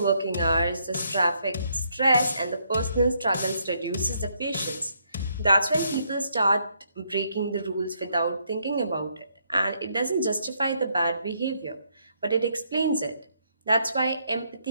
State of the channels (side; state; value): both; inverted; correlation -0.73